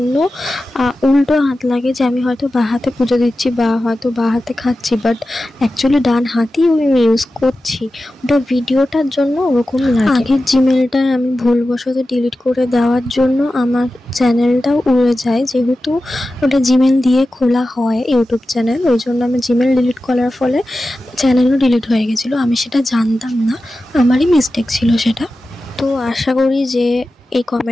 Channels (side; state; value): both; normal; correlation 0.94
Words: উল্টো হাত লাগে যে আমি হয়তো বাঁ হাতে পুজো দিচ্ছি বা হয়তো বাঁ হাতে খাচ্ছি, বাট অ্যাকচুয়ালি ডান হাতেই আমি ইউজ করছি। ওটা ভিডিওটার জন্য ওরকম লাগে। আগের জিমেলটা আমি ভুলবশত ডিলিট করে দেওয়ার জন্য আমার চ্যানেলটাও উড়ে যায়, যেহেতু ওটা জিমেল দিয়ে খোলা হয় ইউটিউব চ্যানেল, ওই জন্য আমি জিমেল ডিলিট করার ফলে চ্যানেলও ডিলিট হয়ে গেছিলো। আমি সেটা জানতাম না, আমারই মিস্টেক ছিল সেটা। তো আশা করি যে এই